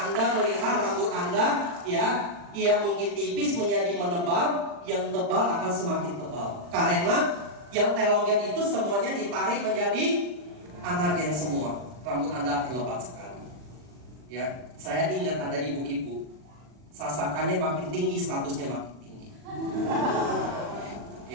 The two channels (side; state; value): left; late; 40 ms